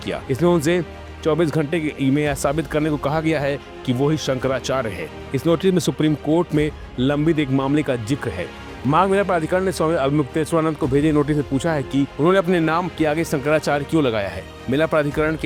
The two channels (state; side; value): identical; both; correlation 1.00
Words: किया। इसमें उनसे 24 घंटे में यह साबित करने को कहा गया है कि वो ही शंकराचार्य है। इस नोटिस में सुप्रीम कोर्ट में लंबित एक मामले का जिक्र है। माघ मेला प्राधिकरण ने स्वामी अवमुक्तेश्वरानंद को भेजे नोटिस में पूछा है कि उन्होंने अपने नाम के आगे शंकराचार्य क्यों लगाया है। मेला प्राधिकरण